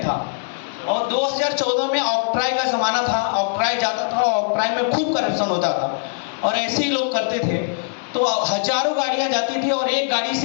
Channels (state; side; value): silent; right; digital silence